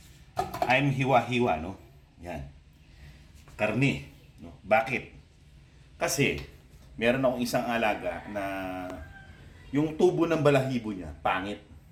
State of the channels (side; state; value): both; identical; correlation 1.00